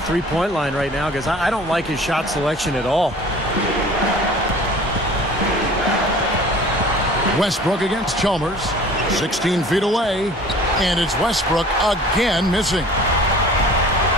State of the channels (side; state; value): both; normal; correlation 0.46